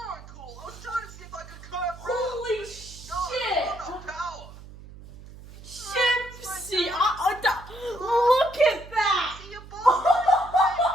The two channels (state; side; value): noise; right; hum, 17 dB below the sound